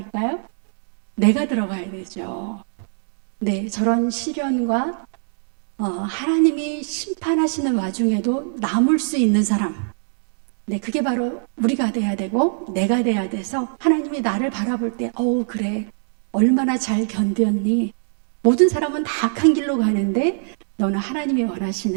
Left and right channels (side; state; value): left; silent; digital silence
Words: 내가 들어가야 되죠. 네, 저런 시련과 하나님이 심판하시는 와중에도 남을 수 있는 사람, 네, 그게 바로 우리가 돼야 되고 내가 돼야 돼서 하나님이 나를 바라볼 때 그래. 얼마나 잘 견뎠니? 모든 사람은 다 악한 길로 가는데 너는 하나님이